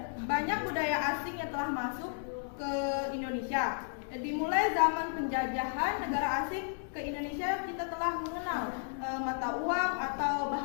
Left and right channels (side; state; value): right; silent; digital silence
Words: banyak budaya asing yang telah masuk ke Indonesia. Dimulai zaman penjajahan negara asing ke Indonesia, kita telah mengenal mata uang atau